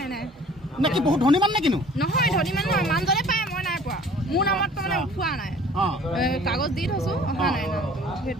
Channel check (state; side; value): normal; both; correlation 0.50